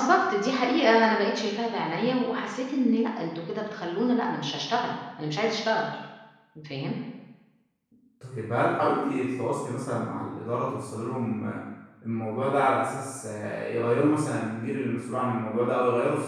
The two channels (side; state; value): both; identical; correlation 1.00